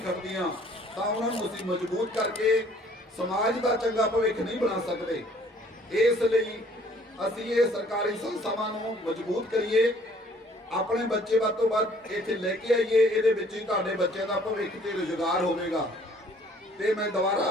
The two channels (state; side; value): normal; both; correlation 0.58